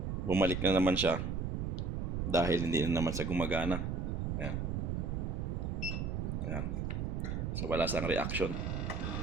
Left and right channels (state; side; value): noise; right; rumble, 1 dB below the sound